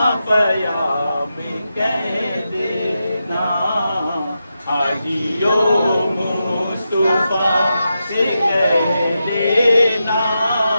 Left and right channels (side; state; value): both; inverted; correlation -0.88